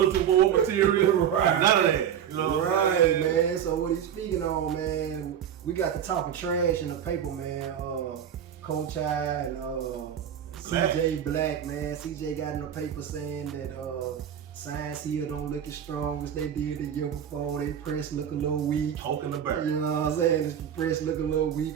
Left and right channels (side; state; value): left; quieter; 9.2 dB